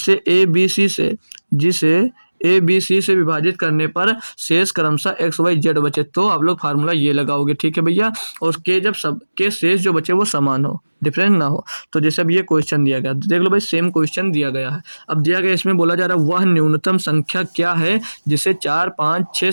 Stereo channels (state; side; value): inverted; both; correlation -1.00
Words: ए बी सी से विभाजित करने पर शेष क्रमशः एक्स वाई जेड बचे, तो आप लोग फार्मूला ये लगाओगे, ठीक है भैया। और के जब सब के शेष जो बचे वो समान हो, डिफरेंट ना हो। तो जैसे अब ये क्वेश्चन दिया गया, देख लो भाई, सेम क्वेश्चन दिया गया है। अब दिया गया, इसमें बोला जा रहा है वह न्यूनतम संख्या क्या है जिसे 4, 5, 6